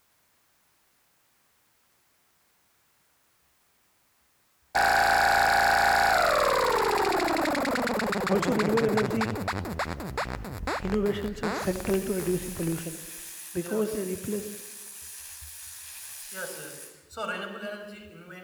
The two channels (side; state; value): both; identical; correlation 1.00